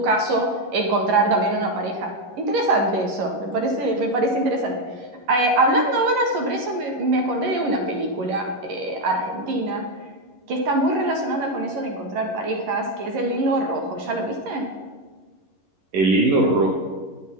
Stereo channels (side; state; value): left; late; 11 ms